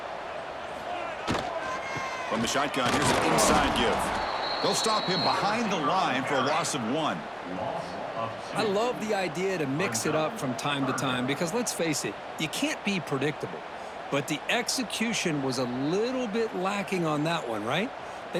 From the shotgun, here's an inside give. They'll stop him behind the line for a loss of 1. I love the idea to mix it up from time to time because, let's face it, you can't be predictable. but the execution was a little bit lacking on that one, right?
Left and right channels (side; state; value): both; identical; correlation 1.00